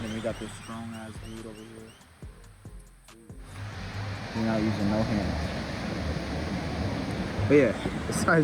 and we got this strong ass dude over here. We're not using no hands. But yeah,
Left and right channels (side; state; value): both; identical; correlation 1.00